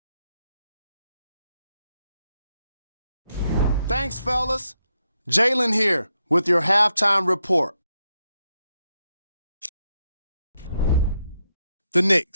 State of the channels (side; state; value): both; inverted; correlation -0.82